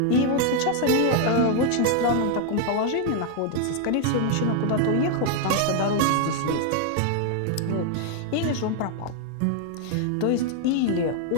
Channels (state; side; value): different; both; correlation 0.00